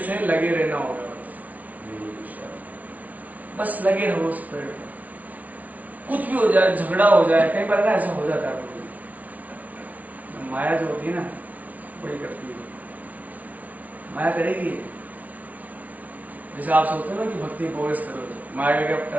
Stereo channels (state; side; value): late; left; 0.072 ms